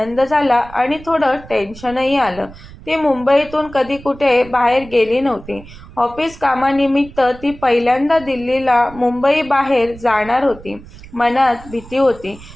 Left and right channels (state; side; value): noise; right; rumble, 18 dB below the sound